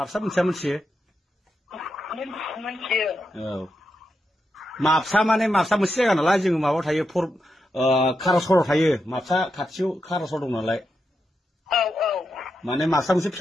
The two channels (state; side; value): normal; both; correlation 0.86